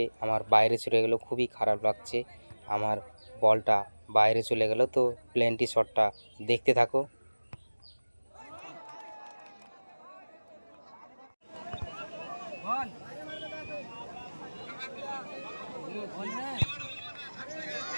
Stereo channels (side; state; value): both; inverted; correlation -1.00